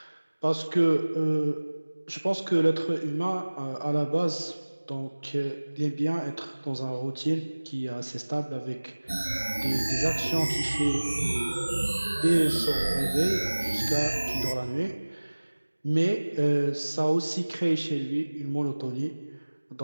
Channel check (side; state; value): both; inverted; correlation -1.00